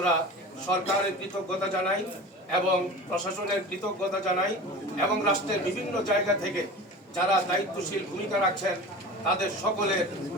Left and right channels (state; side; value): normal; both; correlation 0.35